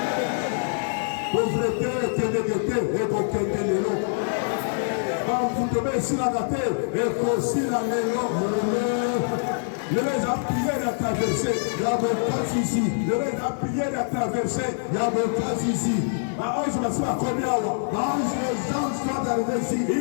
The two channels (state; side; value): silent; right; 62 dB below the other